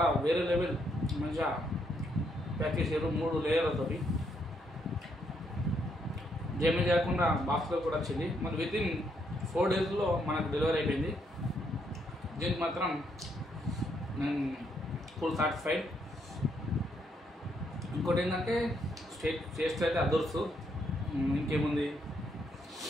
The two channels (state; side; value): normal; both; correlation 0.75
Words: వేరే లెవెల్ మంచిగా ప్యాక్ చేసారు 3 లేయర్లతోటి. డ్యామేజ్ కాకుండా బాక్స్లో కూడా వచ్చింది. మరి వితిన్ 4 డేస్లో మనకు డెలివరీ అయిపోయింది. దీనికి మాత్రం నేను ఫుల్ సాటిస్ఫైడ్. ఇంకోటి ఏంటంటే టేస్ట్ అయితే అదర్సు. ఇంకేముంది?